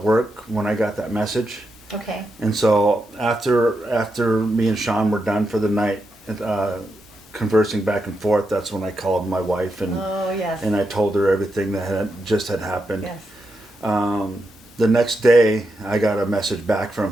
work when I got that message. Okay. And so after me and Sean were done for the night, conversing back and forth, that's when I called my wife and Oh yes. I told her everything that had happened. Yes. The next day, I got a message back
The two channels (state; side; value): normal; both; correlation 0.85